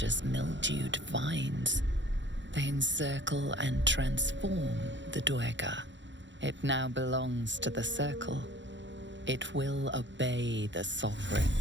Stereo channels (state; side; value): late; left; 0.53 ms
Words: mildewed vines. They encircle and transform the Dweger. It now belongs to the circle. It will obey the Sovereign.